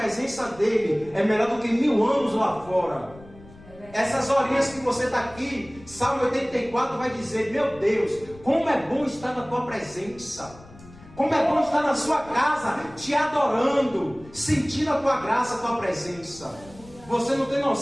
dEle é melhor do que 1000 anos lá fora. Essas horinhas que você está aqui, Salmo 84 vai dizer: meu Deus, como é bom estar na tua presença, como é bom estar na sua casa, te adorando, sentindo a tua graça, a tua presença. Você não tem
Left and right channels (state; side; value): noise; left; rumble, 21 dB below the sound